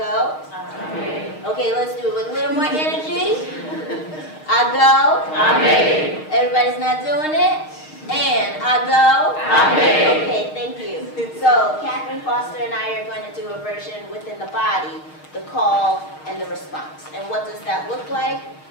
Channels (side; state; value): right; late; 6.5 ms